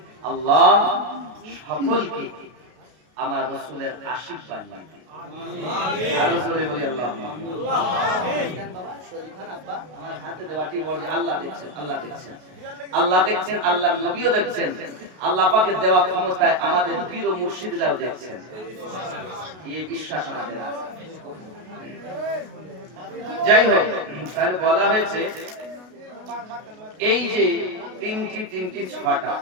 আল্লাহ সকলকে আমার রাসূলের আশিক বানিয়ে দিন আমিন আরো জোরে বলি আল্লাহুম্মা আমিন বাবা শরীফ খান আব্বা আমার হাতে দেওয়াটি বলি আল্লাহ দেখছেন আল্লাহর নবীও দেখছেন আল্লাহ পাকের দেওয়া ক্ষমতায় আমাদের পীর ও মুর্শিদরাও দেখছেন এই বিশ্বাস আমাদের আছে যাই হোক তাহলে বলা হয়েছে এই যে তিনটি ছটা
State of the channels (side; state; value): left; late; 32 ms